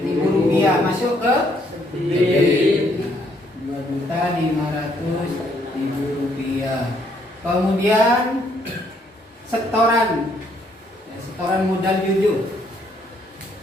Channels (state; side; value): normal; both; correlation 0.69